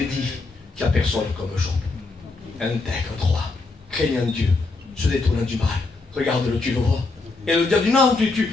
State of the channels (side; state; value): right; quieter; 3.6 dB